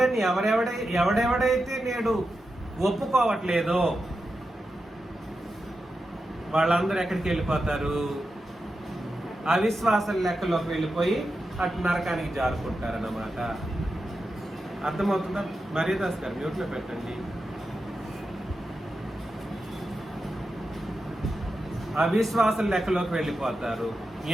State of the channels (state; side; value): normal; both; correlation 0.89